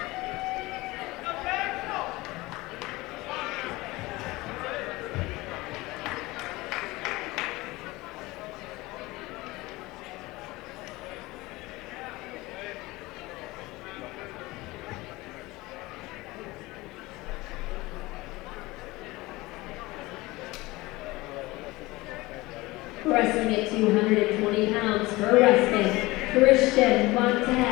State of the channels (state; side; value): quieter; right; 20.8 dB